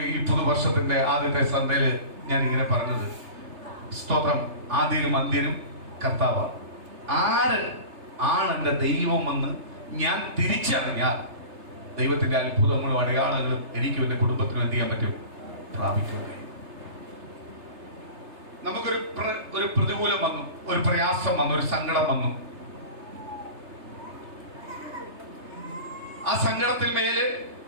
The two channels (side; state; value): left; late; 3.3 ms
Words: ഈ പുതുവർഷത്തിന്റെ ആദ്യത്തെ സന്ധ്യയില് ഞാൻ ഇങ്ങനെ പറഞ്ഞത്, സ്തോത്രം, ആദ്യനും അന്ത്യനും കർത്താവാണ്. ആര് ആണ് എൻ്റെ ദൈവമെന്ന് ഞാൻ തിരിച്ചറിഞ്ഞാൽ ദൈവത്തിന്റെ അത്ഭുതങ്ങളും അടയാളങ്ങളും എനിക്കും എൻ്റെ കുടുംബത്തിനും എന്ത് ചെയ്യാൻ പറ്റും? പ്രാപിക്കുക. നമുക്കൊരു പ്രതികൂലം വന്നു, ഒരു പ്രയാസം വന്നു, ഒരു സങ്കടം വന്നു. ആ സങ്കടത്തിൽ മേല്